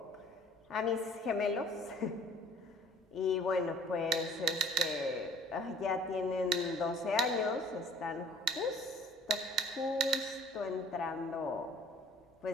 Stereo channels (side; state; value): both; normal; correlation 0.51